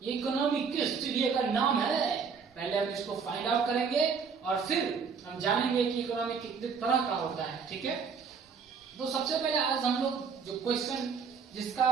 ये इकोनॉमी किस चिड़िया का नाम है. पहले हम इसको फाइंड आउट करेंगे और फिर हम जानेंगे कि इकोनॉमी कितने तरह का होता है. ठीक है, तो सबसे पहले आज हम लोग जो क्वेश्चन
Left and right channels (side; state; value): left; quieter; 5.8 dB